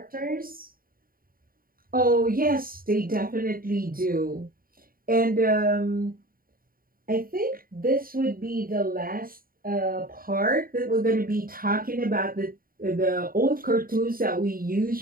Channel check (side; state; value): left; late; 0.42 ms